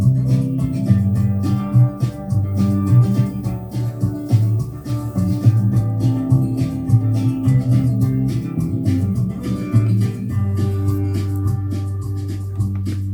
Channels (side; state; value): both; identical; correlation 1.00